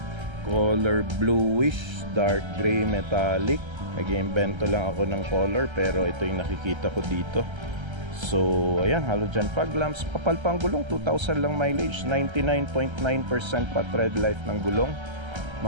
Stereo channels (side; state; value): left; late; 1.3 ms